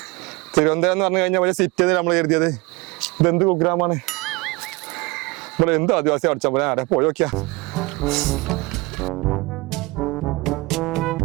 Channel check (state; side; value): quieter; left; 24.0 dB